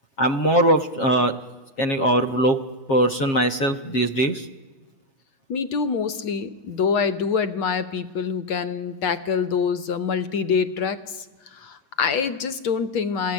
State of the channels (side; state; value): right; late; 7.4 ms